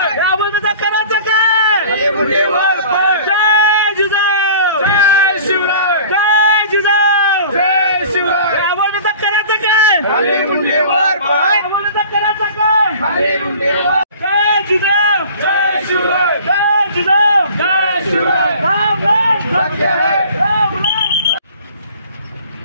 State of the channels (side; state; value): both; inverted; correlation -0.45